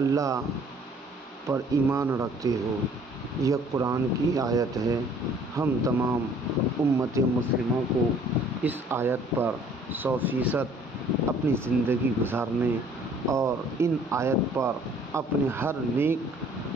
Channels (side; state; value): both; normal; correlation 0.56